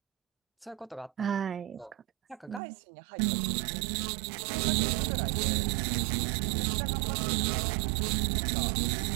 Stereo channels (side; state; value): left; drops out; at 2.6 s